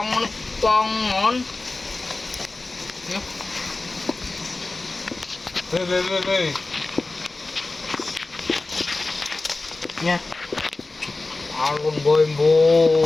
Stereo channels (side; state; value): right; quieter; 3.3 dB